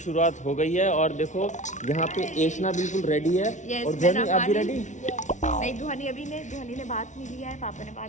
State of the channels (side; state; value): right; late; 0.36 ms